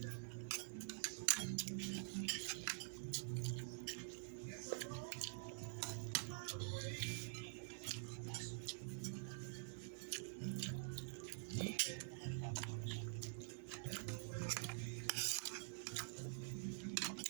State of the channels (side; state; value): left; silent; digital silence